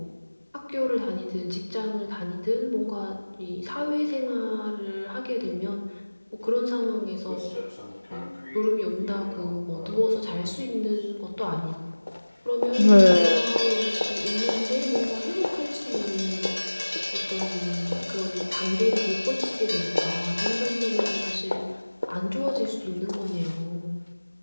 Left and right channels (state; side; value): inverted; both; correlation -1.00